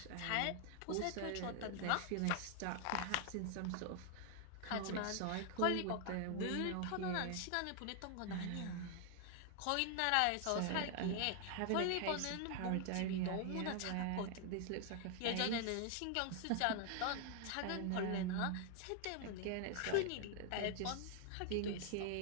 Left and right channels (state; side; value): different; both; correlation 0.00